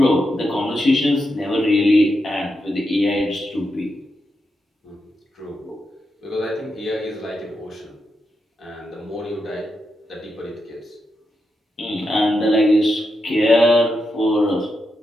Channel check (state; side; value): normal; both; correlation 0.86